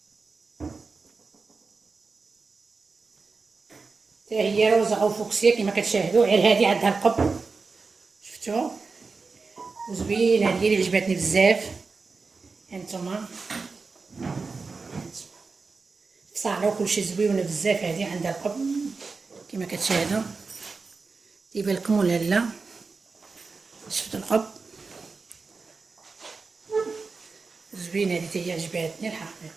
هي روزا او فوكسيا كما كتشاهدوا. غير هذه عندها القب، شفتوا وزوينه. هذه اللي عجبتني بزاف. هانتوما صاله وكلشي زويونه بزاف. هذه عندها القب كما كتشاهدوا. يبان لكم ولا لا؟ شفتوا القب زوينه. هذه هي عجبتني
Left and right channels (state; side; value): quieter; left; 4.4 dB